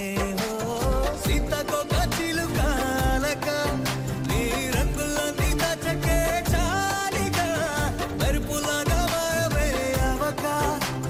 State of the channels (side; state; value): both; identical; correlation 1.00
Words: సీతకొక చిలుకాలక నీ రంగులన్నీ దచకే చాలిగా మెరుపులాగా మాయమే అవక